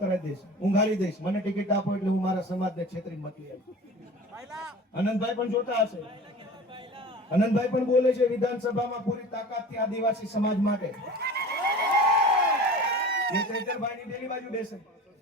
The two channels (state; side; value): normal; both; correlation 0.39